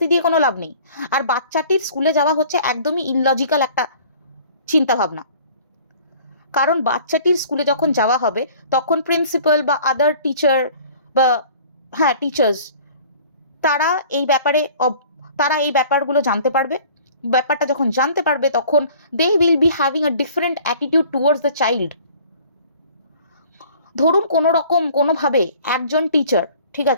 দিয়ে কোনো লাভ নেই। আর বাচ্চাটির স্কুলে যাওয়া হচ্ছে একদমই ইললজিক্যাল একটা চিন্তাভাবনা। কারণ বাচ্চাটির স্কুলে যখন যাওয়া হবে তখন প্রিন্সিপাল বা আদার টিচার, বা টিচার্স, তারা এই ব্যাপারগুলো জানতে পারবে, ব্যাপারটা যখন জানতে পারবে তখন they will be having a different attitude towards the child. ধরুন কোনো রকম কোনোভাবে একজন টিচার, ঠিক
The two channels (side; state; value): both; inverted; correlation -0.50